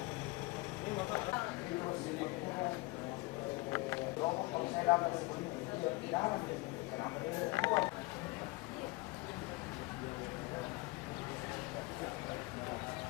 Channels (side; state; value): right; quieter; 23.2 dB